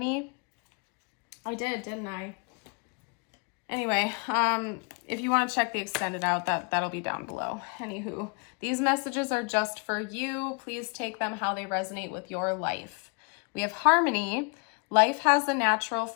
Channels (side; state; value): right; quieter; 36.4 dB